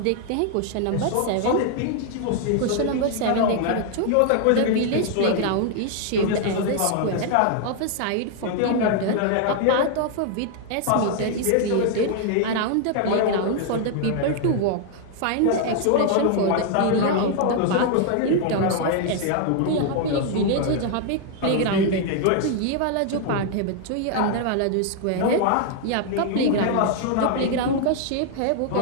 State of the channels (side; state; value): both; different; correlation 0.00